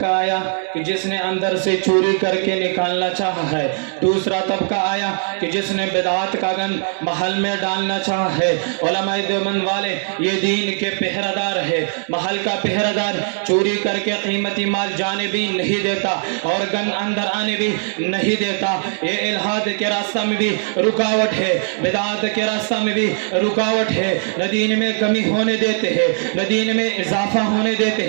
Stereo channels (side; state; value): left; silent; digital silence